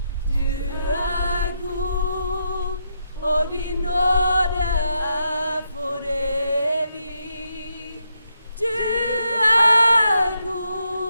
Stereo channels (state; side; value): inverted; both; correlation -0.81